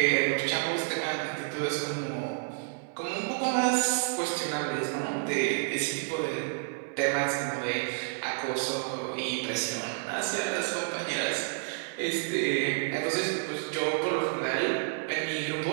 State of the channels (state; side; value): silent; left; 58 dB below the other